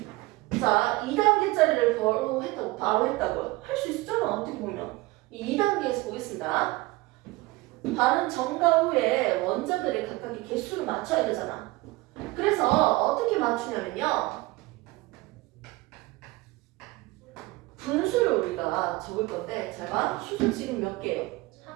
자, 2단계짜리를 바로 했다고요. 할 수 있었잖아, 어떻게 보면. 이 2단계에서 보겠습니다. 반응 전과 후에 원자들의 각각의 개수를 맞춰야 되잖아. 그래서 어떻게 맞추냐면요. 분수를 우리가 적을 건데, 잘 봐. 수소 지금 몇 개예요?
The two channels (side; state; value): left; quieter; 21.0 dB